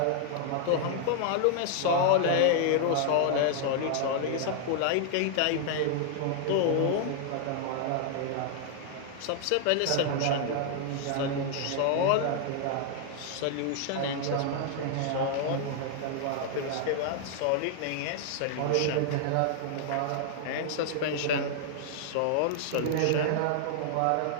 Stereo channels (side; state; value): both; different; correlation 0.00